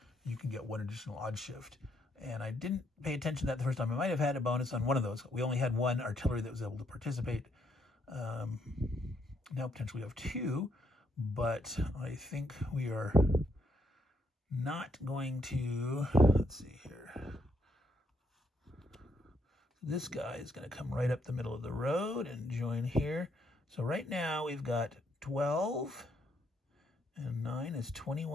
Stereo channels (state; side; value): normal; both; correlation 0.74